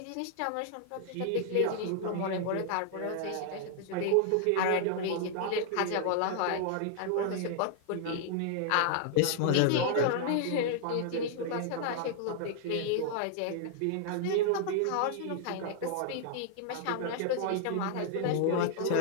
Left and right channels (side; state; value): both; different; correlation 0.00